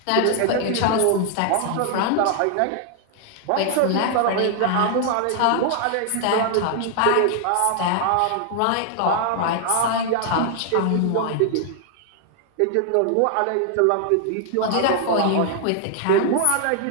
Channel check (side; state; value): both; different; correlation 0.00